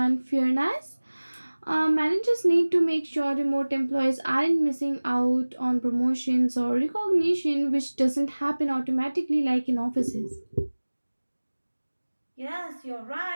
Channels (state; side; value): inverted; both; correlation -1.00